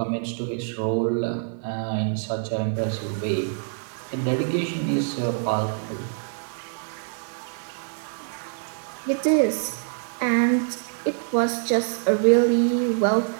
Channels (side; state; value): left; silent; digital silence